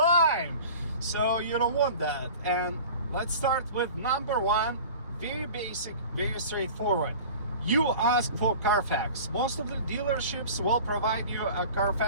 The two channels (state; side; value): inverted; both; correlation -0.39